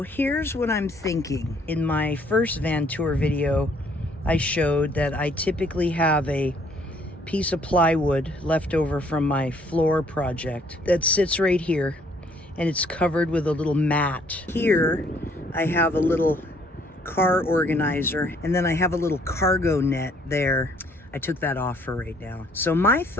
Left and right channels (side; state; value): both; normal; correlation 0.63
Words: here's what I'm thinking. In my first van tour video, I showed that I typically have a piece of plywood left over from my floor project that sits right here, and it's covered with a little mat. Here I have a little car organizer, and then I have a little cargo net there. I took that off for right now. So my